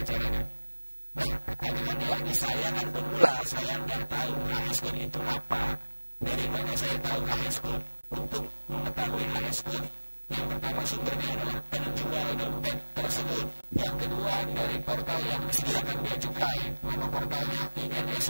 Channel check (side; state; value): both; inverted; correlation -1.00